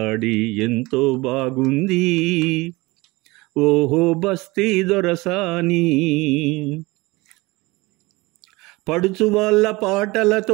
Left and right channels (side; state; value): left; quieter; 22.5 dB